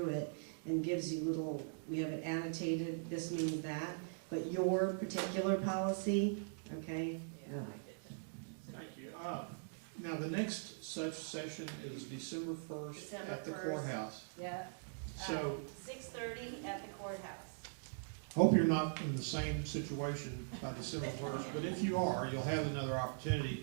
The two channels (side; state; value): left; silent; digital silence